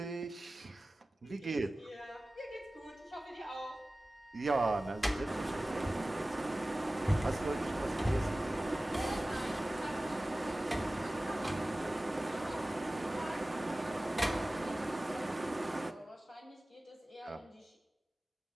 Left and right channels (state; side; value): normal; both; correlation 0.97